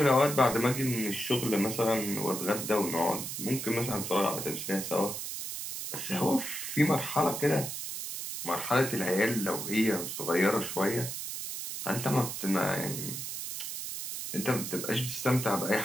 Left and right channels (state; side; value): noise; right; hiss, 6 dB below the sound